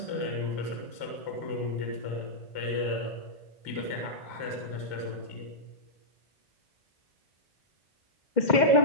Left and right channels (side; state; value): right; late; 2.1 ms